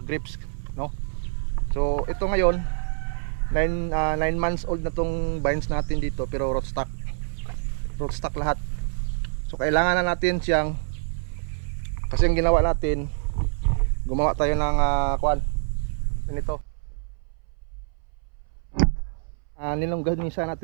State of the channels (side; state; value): left; silent; 61 dB below the other